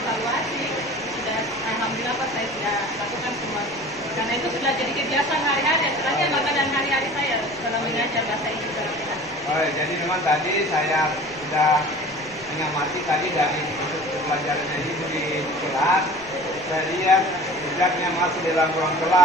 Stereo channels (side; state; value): left; noise; rumble, 23 dB below the sound